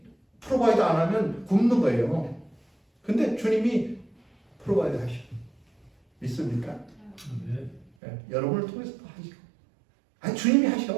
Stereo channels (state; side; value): drops out; left; at 7.9 s